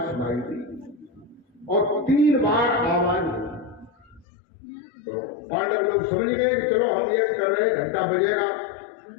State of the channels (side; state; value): right; drops out; at 4.2 s